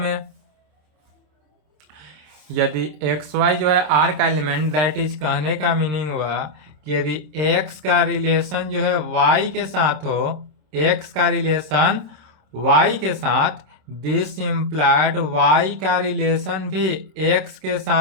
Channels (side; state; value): left; late; 26 ms